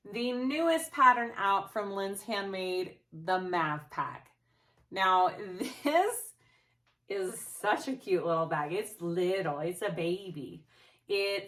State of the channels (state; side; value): identical; both; correlation 1.00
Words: the newest pattern out from Linds Handmade, the Mav Pack. Now this is such a cute little bag. It's little, it's a baby. I